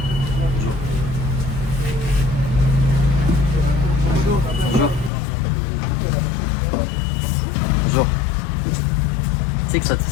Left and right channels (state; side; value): drops out; right; at 5.1 s